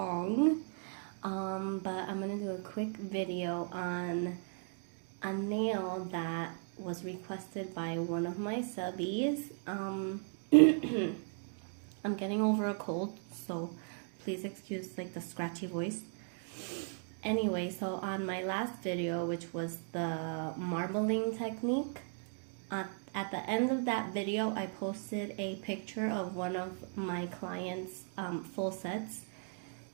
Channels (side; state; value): left; silent; 53 dB below the other